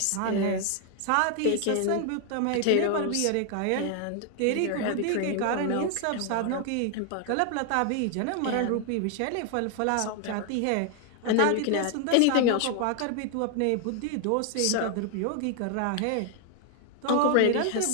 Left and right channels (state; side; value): different; both; correlation 0.00